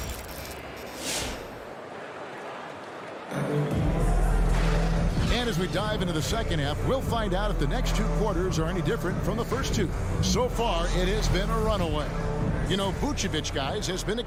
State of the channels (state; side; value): identical; both; correlation 1.00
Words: And as we dive into the second half, we'll find out if the next two quarters are any different from the first two. So far, it has been a runaway. You know, Vucevic, guys, has been